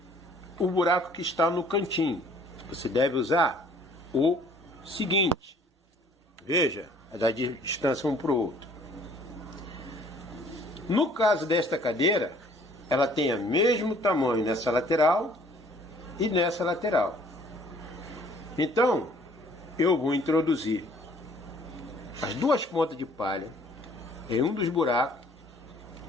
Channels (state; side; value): normal; both; correlation 0.57